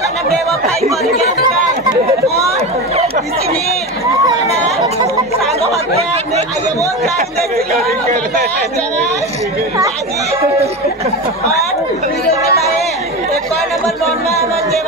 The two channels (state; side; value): normal; both; correlation 0.23